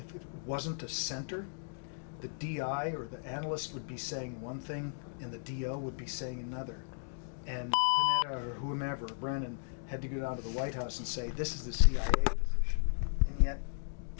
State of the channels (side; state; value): right; silent; digital silence